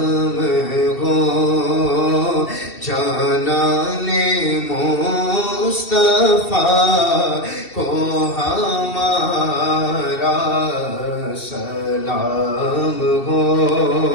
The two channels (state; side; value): late; right; 2.7 ms